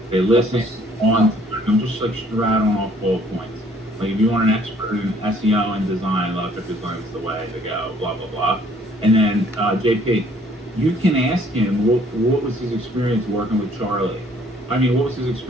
They listen on. I'm just like rattling off bullet points. Like if you want an expert in SEO and design, Locker Design is the way to go. Blah blah blah. And then JP, you can ask him what was his experience working with Charlie. I mean, what was his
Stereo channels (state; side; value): normal; both; correlation 0.60